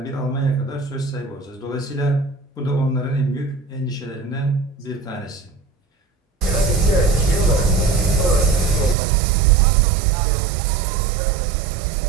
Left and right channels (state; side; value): drops out; left; at 9.0 s